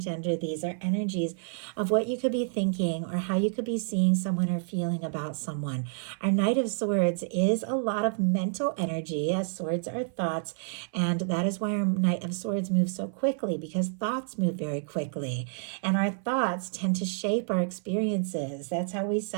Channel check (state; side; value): silent; left; 59 dB below the other